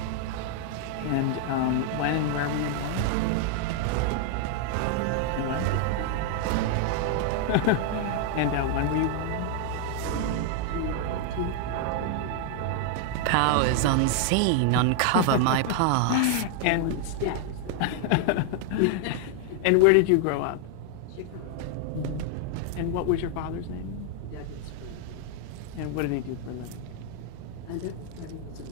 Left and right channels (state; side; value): different; both; correlation 0.00